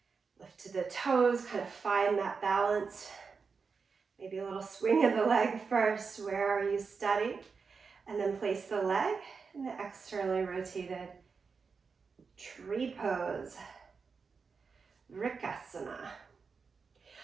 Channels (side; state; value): left; quieter; 5.2 dB